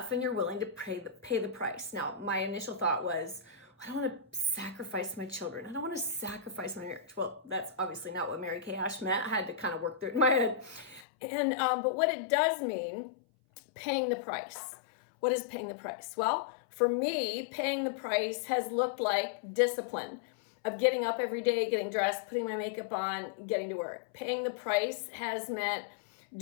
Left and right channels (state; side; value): drops out; right; at 11.1 s